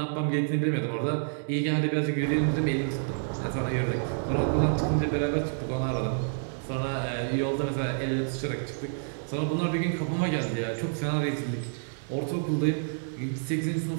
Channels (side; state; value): left; silent; digital silence